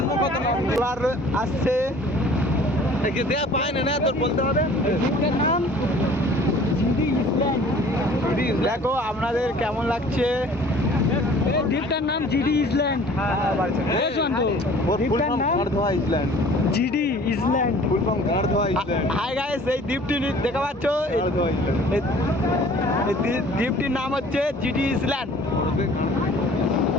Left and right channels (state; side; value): normal; both; correlation 0.50